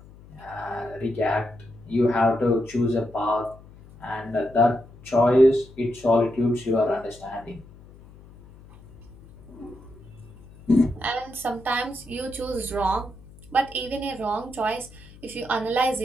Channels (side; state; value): left; noise; hum, 21 dB below the sound